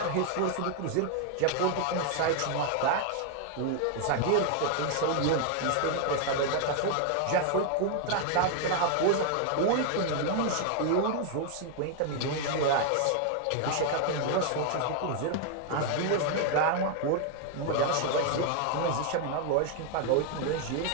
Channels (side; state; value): both; different; correlation 0.00